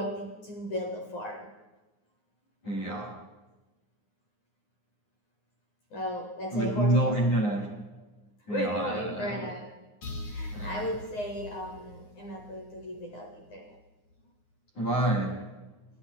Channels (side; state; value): right; late; 9.6 ms